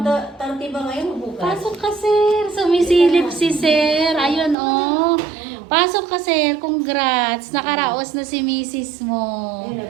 Bukas pa, 30 ba ngayon o bukas? Pasok ka, sir. Sumisilip si sir. Ayun, oh. Pasok ka, sir. Congrats. Nakaraos na si misis mo. Ayun,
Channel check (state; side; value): drops out; left; at 4.5 s